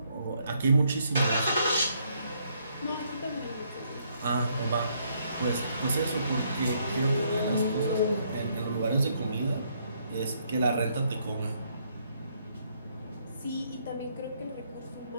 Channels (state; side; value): inverted; both; correlation -0.71